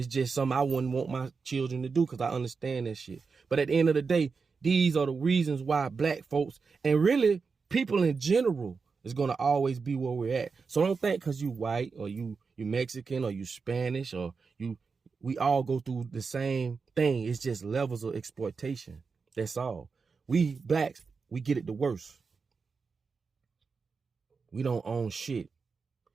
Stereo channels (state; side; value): quieter; left; 5.0 dB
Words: just something I wouldn't want my children to do because I understand that shit. But at the end of the day, these are the reasons why black folks and really people in general is going to always be where we're at. So don't think because you white or you Mexican or you Spanish or we all go through the same thing. It's just levels of exploitation. That's all. We blacks, we get it the worst. We don't own shit.